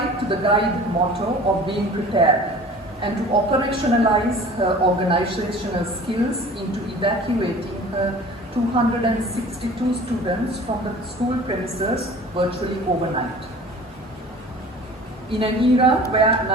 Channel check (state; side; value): normal; both; correlation 0.44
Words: to the guide motto of being prepared and to operationalize her organizational skills into evacuating her 262 students from the school premises virtually overnight. In an era where